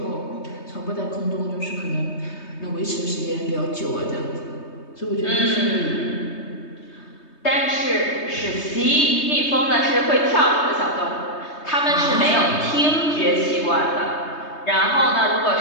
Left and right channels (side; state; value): right; late; 3.2 ms